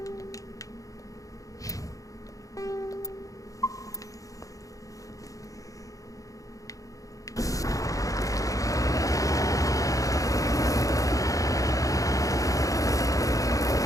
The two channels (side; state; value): right; late; 0.16 ms